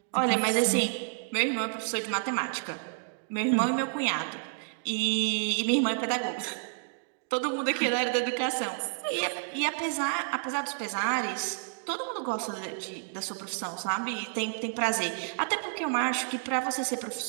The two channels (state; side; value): silent; left; digital silence